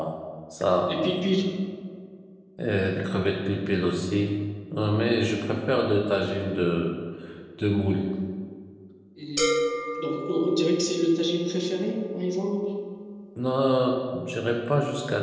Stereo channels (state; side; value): identical; both; correlation 1.00